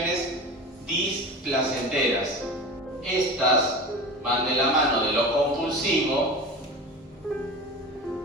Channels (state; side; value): normal; both; correlation 0.32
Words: displacenteras. Estas van de la mano de lo compulsivo